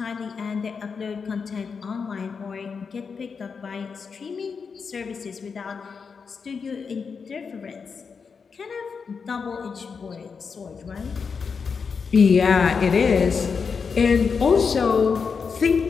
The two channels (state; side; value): quieter; right; 5.6 dB